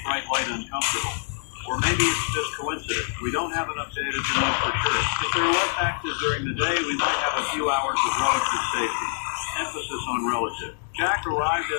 bright light uncomfortable. Or maybe it's just coincidence. We don't have enough data to know for sure. If they're less active during the day, we might have a few hours of relative safety. Emphasis on relative. Jack arrived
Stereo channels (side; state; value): right; silent; digital silence